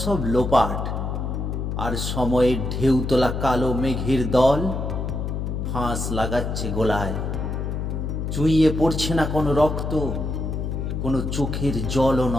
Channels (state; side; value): noise; left; hum, 3 dB below the sound